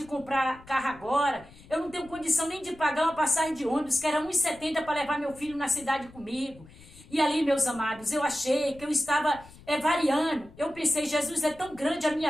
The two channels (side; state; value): left; noise; rumble, 22 dB below the sound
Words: comprar carro agora, eu não tenho condição nem de pagar uma passagem de ônibus, que era R$ 1,70 para levar meu filho na cidade comigo. E ali, meus amados, eu achei que eu estava variando. Eu pensei, Jesus, é tão grande a minha